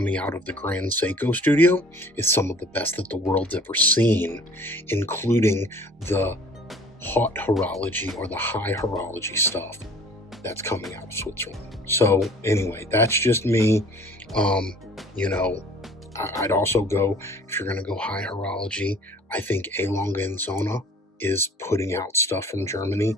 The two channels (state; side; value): normal; both; correlation 0.50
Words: out of the Grand Seiko studio is some of the best that the world's ever seen, including the hot horology or the high horology stuff that's coming out of Switzerland. So anyway, that's just me. I'd also go, if you're going to go high horology, I think A. Longa and Zona is putting out stuff from Germany